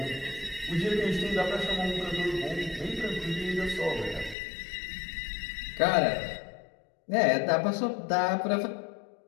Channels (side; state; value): right; drops out; at 4.4 s